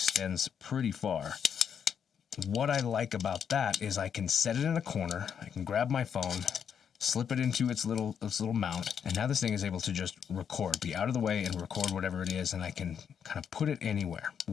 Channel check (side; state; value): right; quieter; 7.7 dB